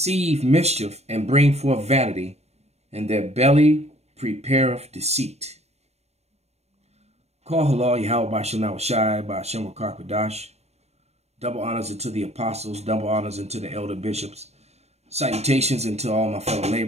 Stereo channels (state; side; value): late; left; 0.31 ms